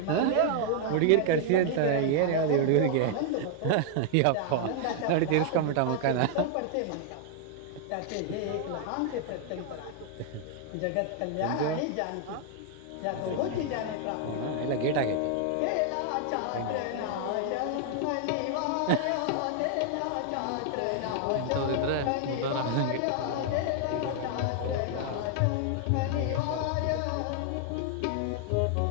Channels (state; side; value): different; both; correlation -0.01